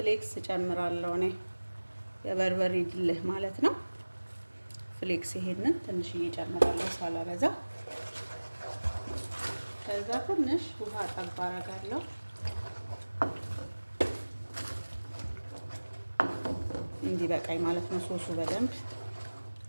ጨምራለሁ እኔ የበርበሬ ድልህ ማለት ነው። ፍሌክስ ይሄንን ትንሽዬ ጨምራለሁ ሳላበዛ። ከዛ ትንሽ ውሃ ጠብ አደርጋለሁ። እንዲበቃኝ ማለት ነው ሶሱ በደንብ።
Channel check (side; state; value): both; inverted; correlation -1.00